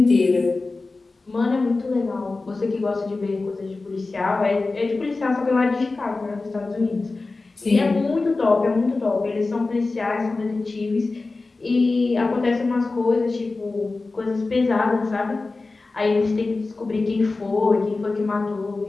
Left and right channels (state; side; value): quieter; right; 3.6 dB